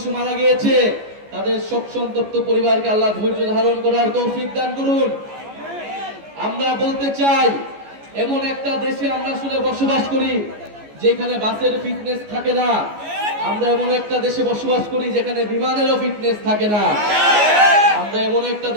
মারা গিয়েছে, তাদের শোক সন্তপ্ত পরিবারকে আল্লাহ ধৈর্য ধারণ করার তৌফিক দান করুন। আমরা বলতে চাই, এমন একটা দেশে আমরা আসলে বসবাস করি যেখানে বাসের ফিটনেস থাকে না। আমরা এমন একটা দেশে বসবাস করি যেখানে বিমানেরও ফিটনেস থাকে না। আমরা এমন একটা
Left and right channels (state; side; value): late; left; 14 ms